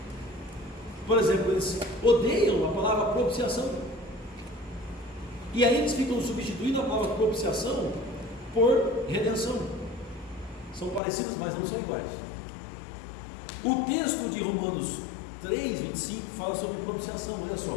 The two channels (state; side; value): drops out; right; at 11.0 s